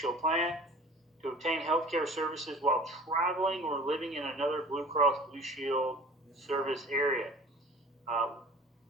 plan to obtain healthcare services while traveling or living in another Blue Cross Blue Shield service area.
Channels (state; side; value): normal; both; correlation 0.44